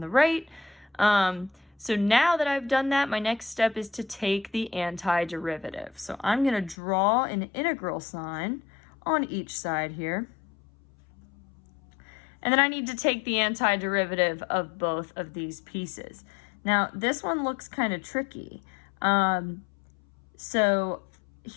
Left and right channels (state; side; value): drops out; right; at 6.8 s